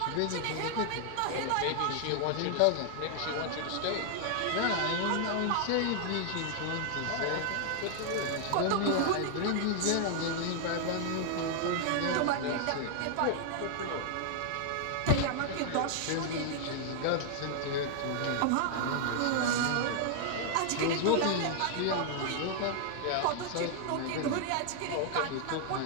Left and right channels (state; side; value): different; both; correlation 0.00